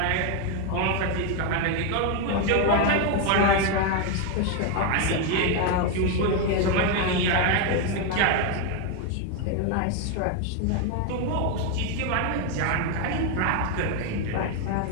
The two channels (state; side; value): different; both; correlation 0.01